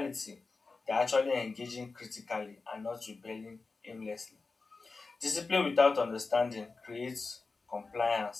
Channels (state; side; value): quieter; right; 4.0 dB